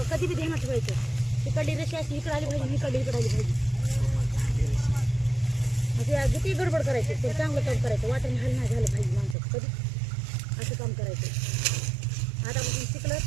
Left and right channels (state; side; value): drops out; left; at 9.3 s